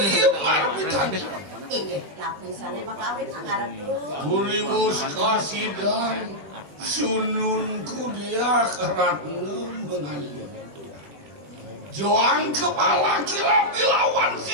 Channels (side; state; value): left; late; 21 ms